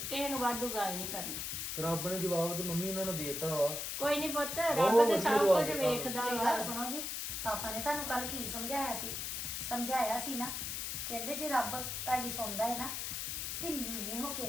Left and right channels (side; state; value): left; noise; hiss, 3 dB below the sound